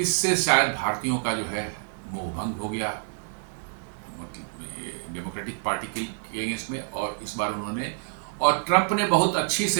शायद भारतीयों का जो है मोहभंग हो गया मतलब डेमोक्रेटिक पार्टी के अगेंस्ट में। और इस बार उन्होंने, और ट्रंप ने बहुत अच्छी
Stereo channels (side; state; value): left; silent; digital silence